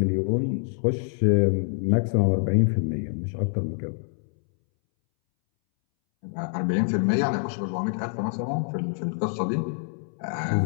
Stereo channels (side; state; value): right; silent; 61 dB below the other